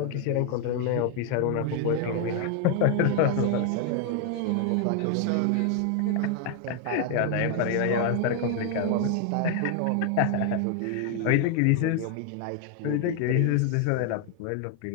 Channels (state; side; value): different; both; correlation 0.00